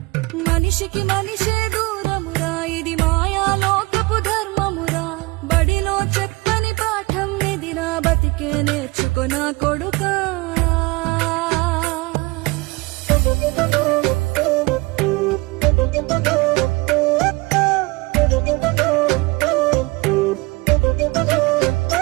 మనిషికి మనిషే దూరమురా, ఇది మాయాలోకపు ధర్మమురా. బడిలో చెప్పని పాఠం నిదిరా, బతికే నేర్చుకున్నా కొడుకా.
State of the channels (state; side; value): quieter; left; 24.2 dB